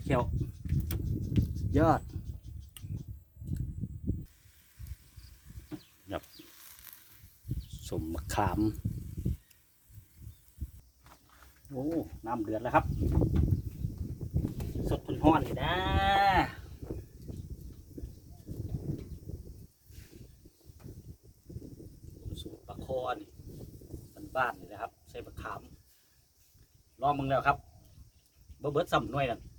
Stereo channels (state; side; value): identical; both; correlation 1.00